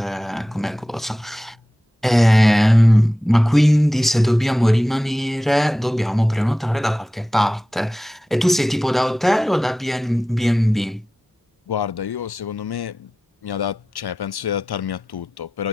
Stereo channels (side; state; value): both; normal; correlation 0.95